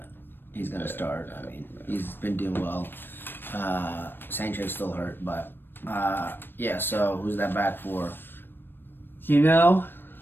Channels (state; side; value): late; right; 0.097 ms